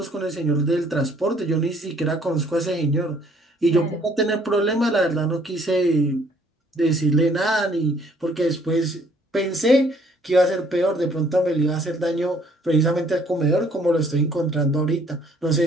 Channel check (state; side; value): normal; both; correlation 0.62